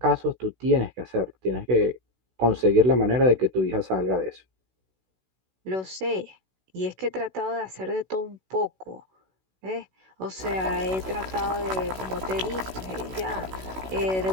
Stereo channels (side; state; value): left; late; 16 ms